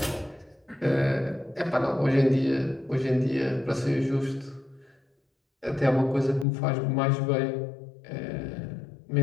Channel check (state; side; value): drops out; right; at 6.5 s